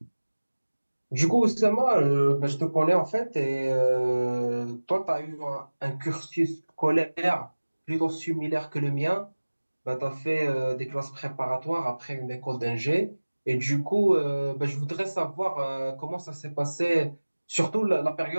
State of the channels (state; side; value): inverted; both; correlation -1.00